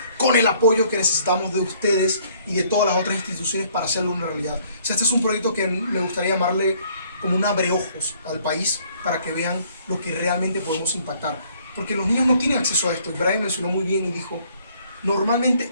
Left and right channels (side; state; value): both; inverted; correlation -0.62